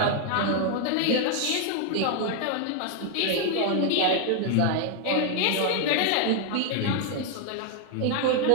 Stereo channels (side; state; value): both; different; correlation 0.00